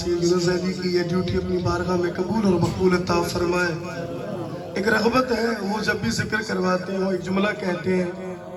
यूनुस अली की ये ड्यूटी अपनी बारगाह में कबूल और मकबूल अता फरमाए। एक रग़बत है, वो जब भी जिक्र करवाते हैं वो एक जुमला कहते हैं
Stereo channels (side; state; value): both; identical; correlation 1.00